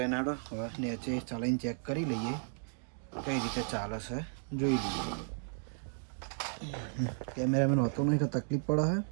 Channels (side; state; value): left; silent; digital silence